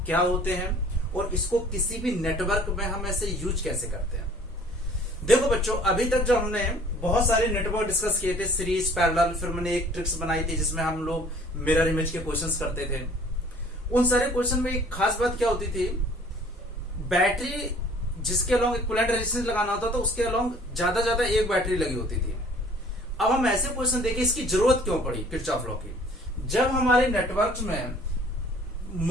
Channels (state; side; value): normal; both; correlation 0.53